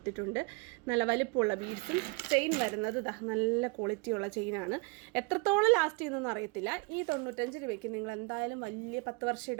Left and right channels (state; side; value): quieter; left; 27.6 dB